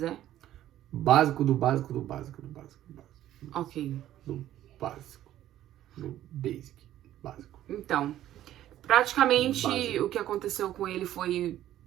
é? Básico do básico do básico do básico do básico. Ok. Do básico. Do basic. Básico. Então, praticamente Básico. o que aconteceu com ele foi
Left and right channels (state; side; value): quieter; left; 12.8 dB